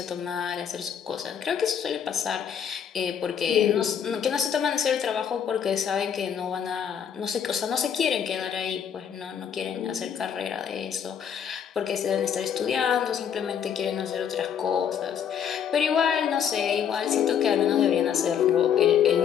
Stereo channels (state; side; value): quieter; right; 8.2 dB